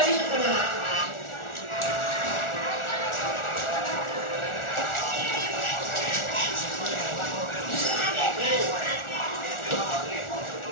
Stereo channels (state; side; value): late; right; 1.4 ms